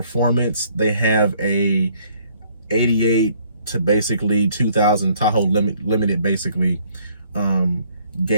they have a 88 to basically 2000 Tahoe limited basically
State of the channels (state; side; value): inverted; both; correlation -0.63